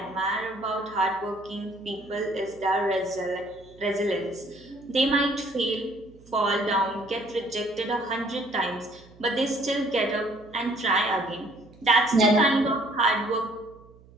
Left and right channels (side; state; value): right; noise; hum, 25 dB below the sound